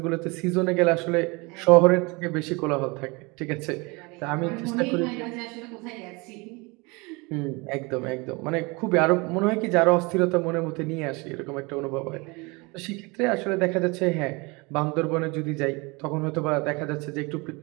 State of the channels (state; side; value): quieter; left; 26.9 dB